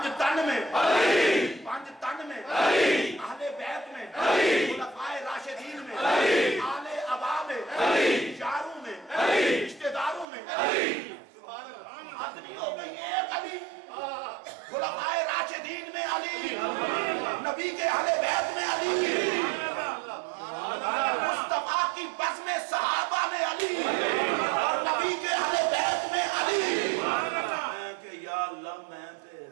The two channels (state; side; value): drops out; left; at 10.2 s